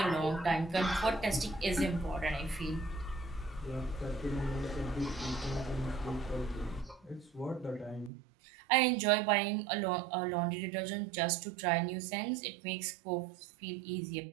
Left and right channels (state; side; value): drops out; left; at 8.1 s